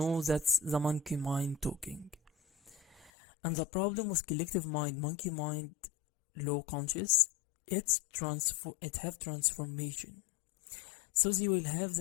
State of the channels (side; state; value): right; drops out; at 3.1 s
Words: that's the monkey mind talking. And the problem with collective mind, monkey mind, low conscious, it have transformation. So they will have